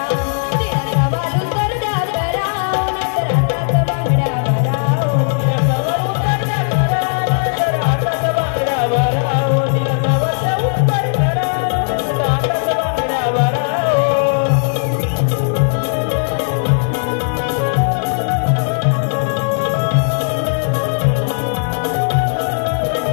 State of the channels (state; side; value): silent; right; digital silence